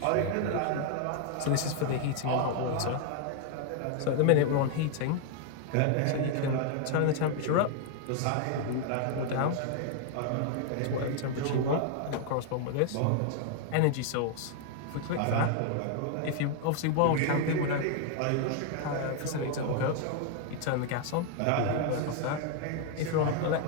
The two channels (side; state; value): both; different; correlation 0.00